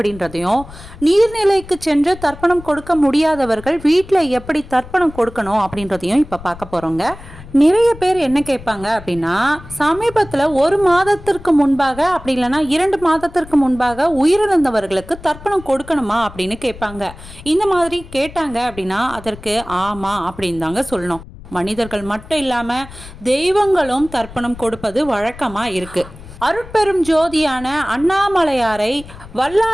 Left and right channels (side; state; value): left; noise; rumble, 17 dB below the sound